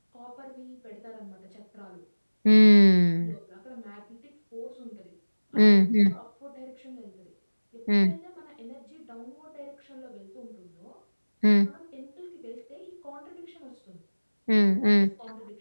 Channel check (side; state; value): both; inverted; correlation -1.00